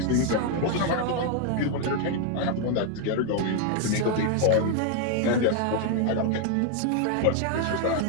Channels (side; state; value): both; different; correlation 0.00